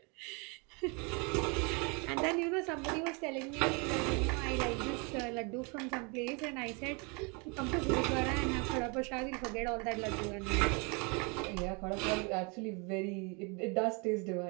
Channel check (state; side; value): quieter; left; 31.9 dB